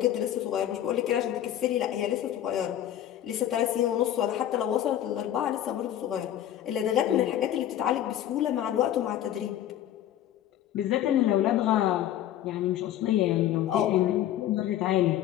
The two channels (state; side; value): quieter; right; 11.8 dB